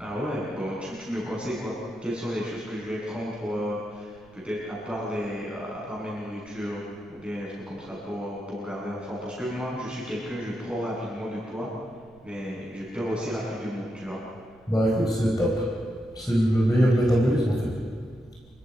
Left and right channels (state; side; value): noise; right; rumble, 27 dB below the sound